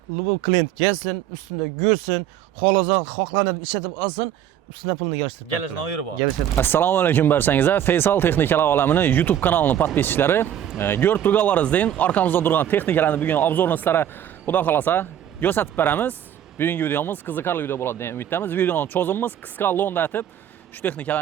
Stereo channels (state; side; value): quieter; left; 10.5 dB